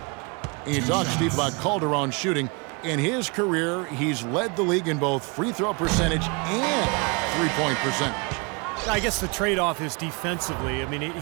And you talk, Steve, about Calderon shooting. In his career, he's led the league in both free throw percentage and three-point percentage. I guess the trade-off is defensively. I mean,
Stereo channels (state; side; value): quieter; left; 30.7 dB